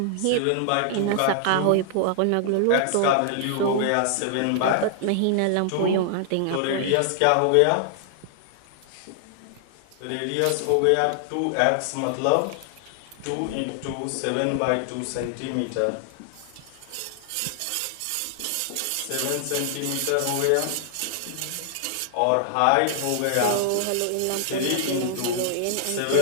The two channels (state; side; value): different; both; correlation -0.01